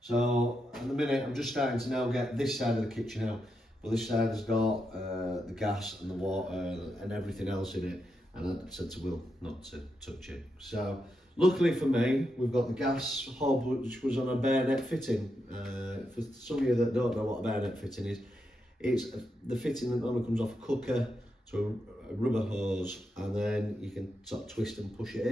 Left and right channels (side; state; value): both; normal; correlation 0.84